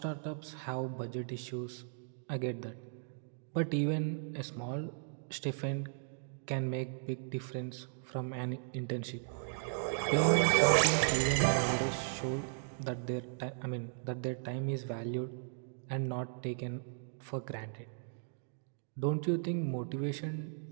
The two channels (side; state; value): left; silent; digital silence